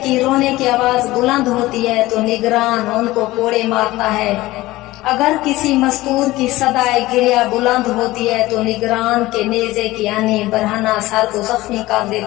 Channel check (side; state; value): right; quieter; 18.2 dB